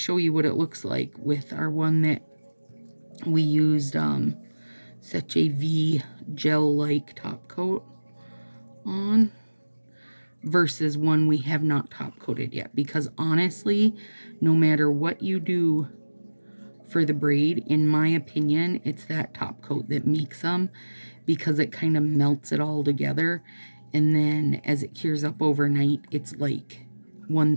you what it looks like with our one that we used such a V gel-like top coat on versus one we have not top coated yet. Because honestly, no matter what you do for the braid, in my opinion, it's that top coat that makes them, because it kind of melts it all together, and then as it cures up overnight, it's like one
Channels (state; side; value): inverted; both; correlation -1.00